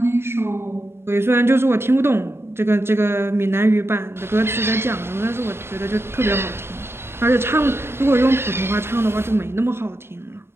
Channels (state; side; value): late; left; 0.12 ms